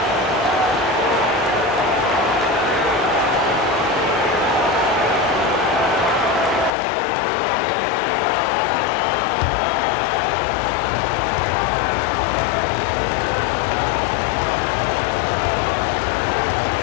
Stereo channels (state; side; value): drops out; right; at 6.7 s